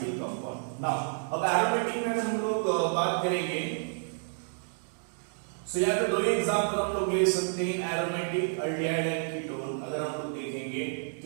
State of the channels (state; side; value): silent; left; 58 dB below the other